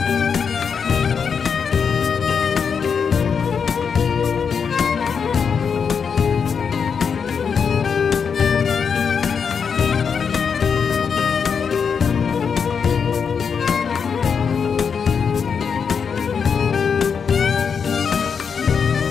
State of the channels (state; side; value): quieter; right; 6.4 dB